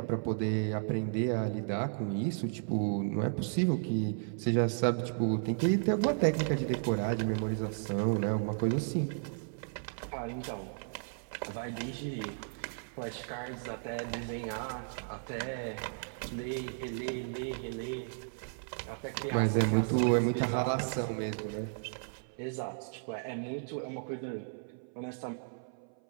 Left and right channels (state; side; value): silent; left; 55 dB below the other